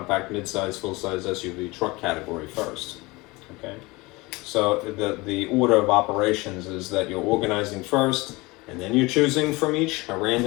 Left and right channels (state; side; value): quieter; right; 23.2 dB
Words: midsize, full-size SUV truck category first. Okay, so the order of operations is that you're organizing first, and then you're choosing from each a